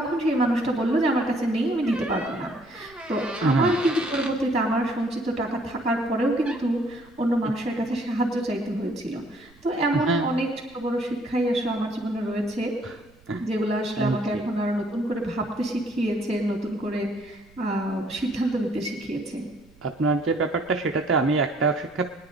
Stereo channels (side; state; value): right; noise; rumble, 28 dB below the sound